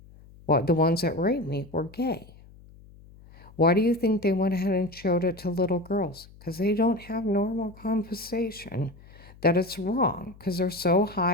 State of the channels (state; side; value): noise; left; hum, 22 dB below the sound